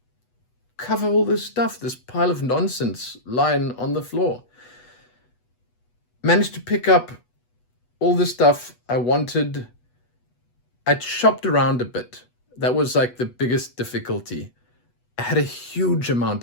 cover all this stuff, this pile of nonsense lying on the floor. Managed to pick up all the stuff I wanted I'd shopped around a bit. That was like the biggest difficulty. I had a huge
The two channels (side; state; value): right; late; 8.2 ms